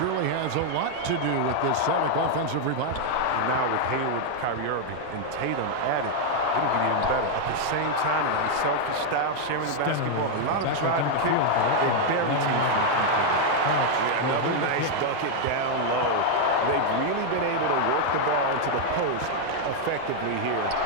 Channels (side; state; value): both; different; correlation 0.00